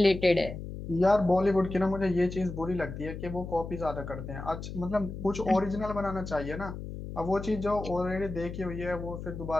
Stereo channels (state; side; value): noise; left; hum, 9 dB below the sound